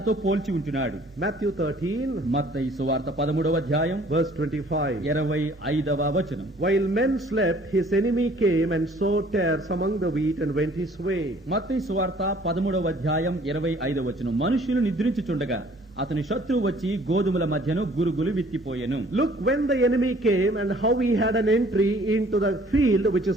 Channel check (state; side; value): normal; both; correlation 0.56